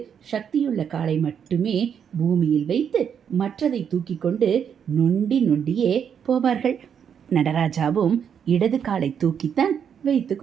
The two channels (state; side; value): quieter; left; 7.8 dB